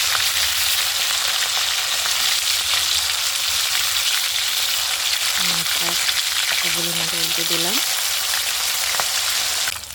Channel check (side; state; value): both; identical; correlation 1.00